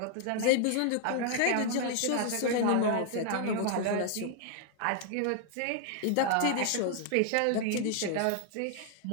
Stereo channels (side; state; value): both; different; correlation 0.00